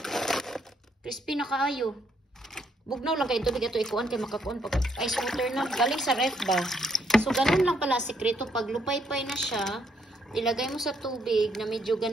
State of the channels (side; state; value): both; normal; correlation 0.72